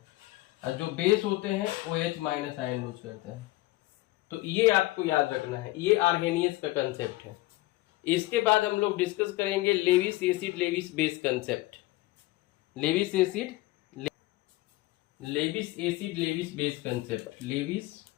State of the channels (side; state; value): right; quieter; 19.1 dB